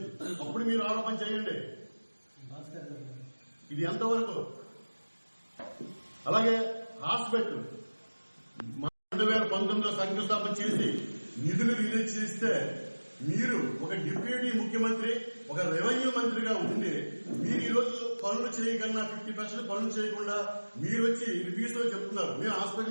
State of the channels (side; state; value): both; inverted; correlation -1.00